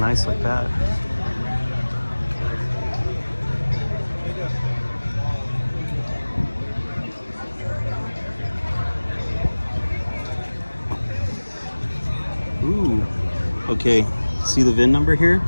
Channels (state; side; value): inverted; both; correlation -1.00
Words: nice like that. Ooh. Okay. See the VIN number here?